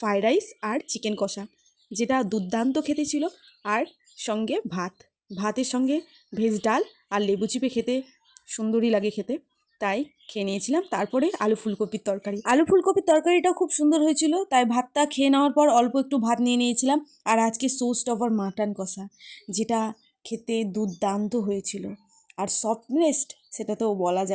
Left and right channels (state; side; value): identical; both; correlation 1.00